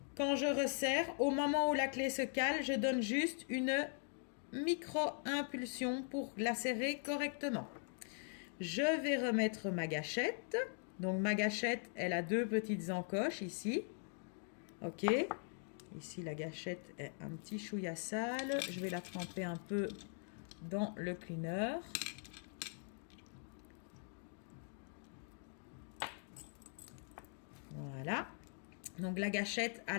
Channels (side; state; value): right; silent; 50 dB below the other